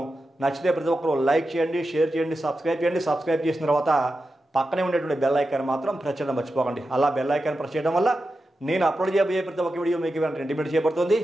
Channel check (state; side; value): normal; both; correlation 0.90